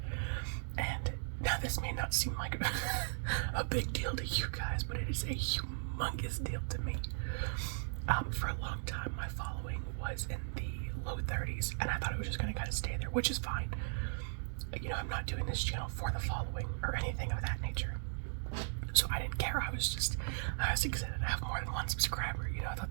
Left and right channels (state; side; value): silent; left; digital silence